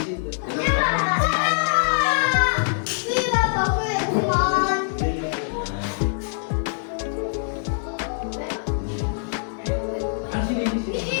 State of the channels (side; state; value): right; silent; 63 dB below the other